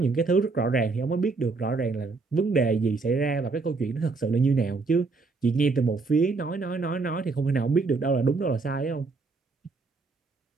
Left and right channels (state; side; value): quieter; left; 4.0 dB